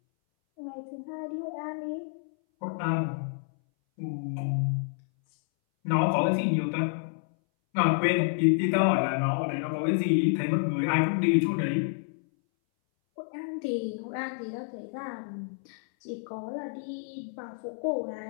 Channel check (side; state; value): right; silent; 59 dB below the other